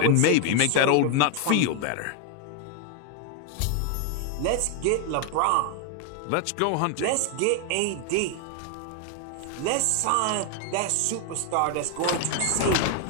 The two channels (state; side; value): different; both; correlation 0.01